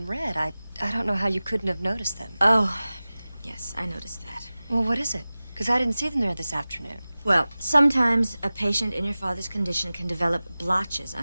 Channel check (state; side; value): inverted; both; correlation -0.98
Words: red. I don't know how you couldn't have noticed them. Oh, yes, I noticed that. Well, what is it? Because I didn't see them there this afternoon. Well, sometimes a patient in your father's condition can develop blotches